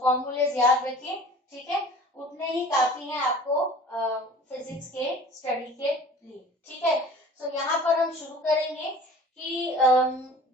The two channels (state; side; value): normal; both; correlation 0.45